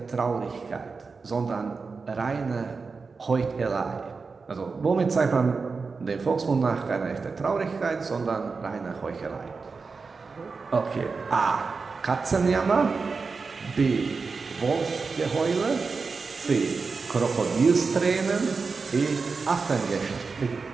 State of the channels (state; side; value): quieter; left; 4.6 dB